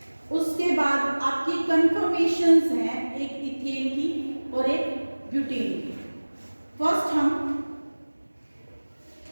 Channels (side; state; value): both; inverted; correlation -1.00